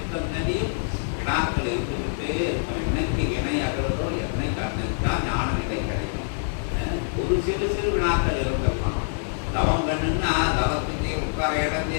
வினாக்கள் இருந்துகிட்டே இருக்கும். என்னைக்கு வினை அகலதோ என்னைக்கு அன்னைக்குதான் ஞான நிலை கிடைக்கும். ஒரு சிறு சிறு வினாக்கள் இருந்திருக்கலாம். தவம் கண்ணுன்னா தவத்துக்கே உட்கார இடம்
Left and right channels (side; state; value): right; silent; digital silence